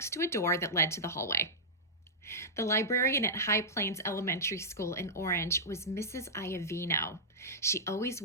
to a door that led to the hallway. The librarian at High Plains Elementary School in Orange was Mrs. Iovino. She always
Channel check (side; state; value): both; normal; correlation -0.11